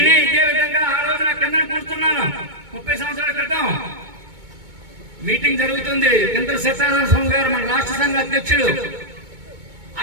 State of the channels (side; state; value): left; late; 2.2 ms